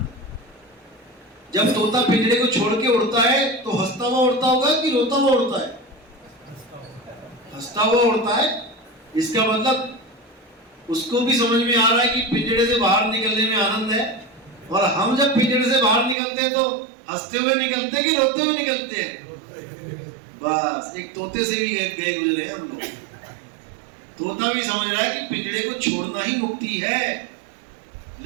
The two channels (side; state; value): left; drops out; at 16.2 s